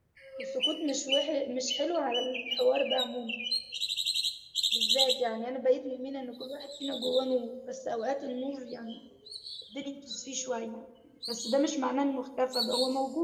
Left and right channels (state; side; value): identical; both; correlation 1.00